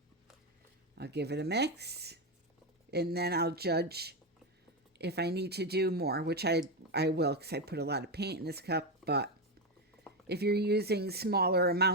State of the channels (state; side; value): normal; both; correlation 0.10